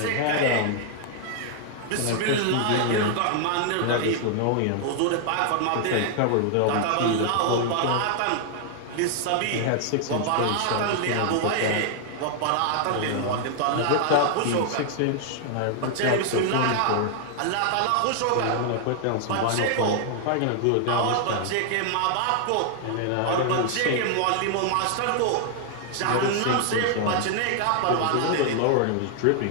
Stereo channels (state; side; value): different; both; correlation 0.00